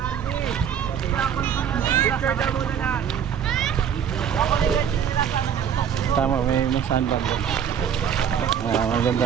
Tama, may sandbag doon.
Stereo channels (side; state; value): left; quieter; 8.3 dB